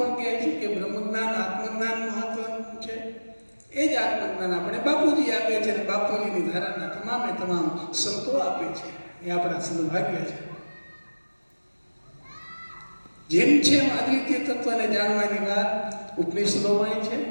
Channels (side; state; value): both; inverted; correlation -1.00